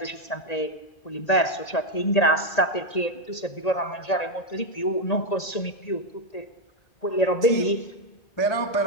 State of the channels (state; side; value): late; right; 1.8 ms